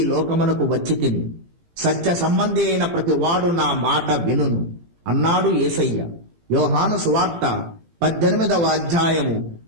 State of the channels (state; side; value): late; left; 18 ms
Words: లోకమునకు వచ్చి తిని. సత్య సంబంధి అయిన ప్రతి వాడు నా మాట వినును అన్నాడు యేసయ్య. యోహాను సువార్త 18వ అధ్యాయము